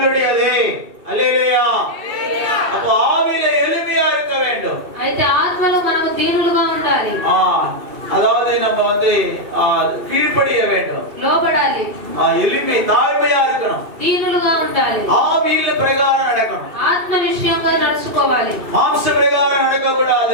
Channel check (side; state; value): left; late; 2.5 ms